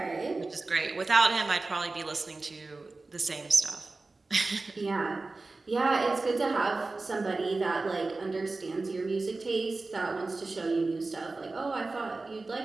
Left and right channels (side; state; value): left; quieter; 3.5 dB